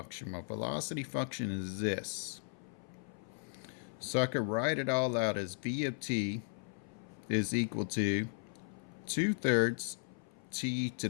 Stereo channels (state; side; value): silent; right; 53 dB below the other